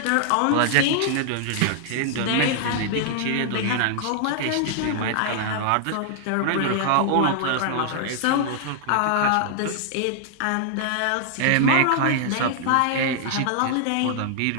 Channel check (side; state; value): both; different; correlation -0.01